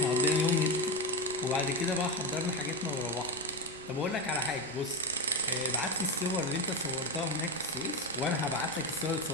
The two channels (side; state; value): left; noise; rumble, 23 dB below the sound